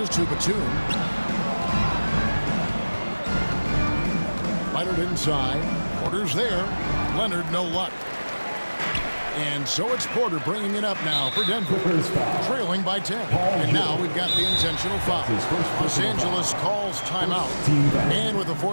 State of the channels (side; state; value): both; inverted; correlation -1.00